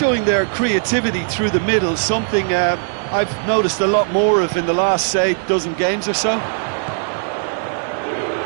their creativity through the middle, something I've noticed a lot more of in the last, say, dozen games or so.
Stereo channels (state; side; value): silent; left; digital silence